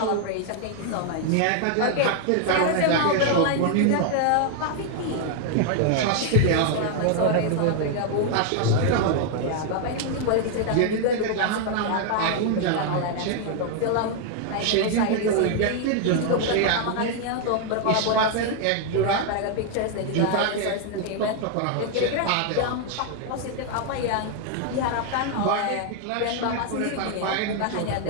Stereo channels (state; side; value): different; both; correlation 0.00